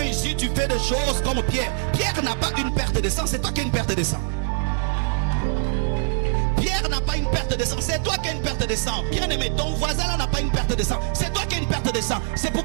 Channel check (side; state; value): left; silent; digital silence